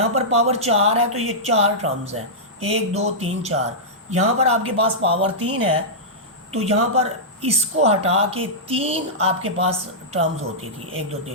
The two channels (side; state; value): both; normal; correlation -0.12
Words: पर पावर 4 है तो ये 4 टर्म्स हैं, 1 2 3 4। यहाँ पर आपके पास पावर 3 है तो यहाँ पर इसको हटा के 3 आपके पास टर्म्स होती थी, 1 2